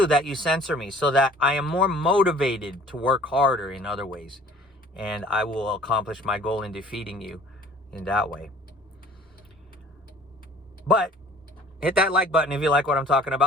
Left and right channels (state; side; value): normal; both; correlation 0.51